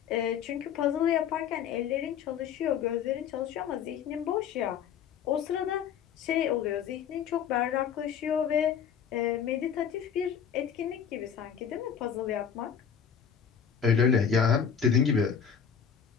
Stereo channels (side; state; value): right; quieter; 7.8 dB